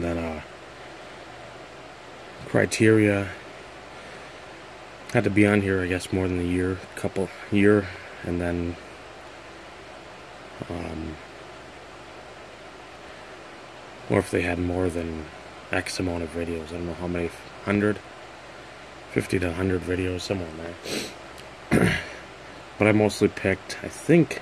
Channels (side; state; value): both; identical; correlation 1.00